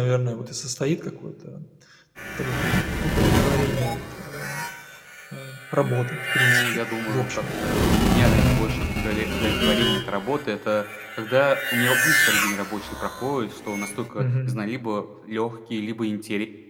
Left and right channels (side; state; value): both; identical; correlation 1.00